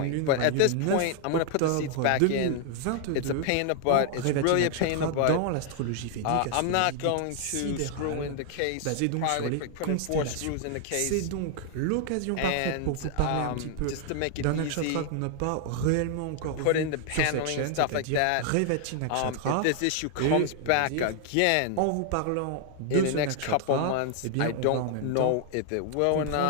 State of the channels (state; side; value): different; both; correlation 0.00